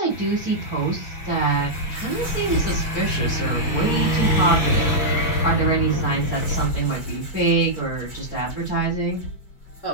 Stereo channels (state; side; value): late; right; 6.0 ms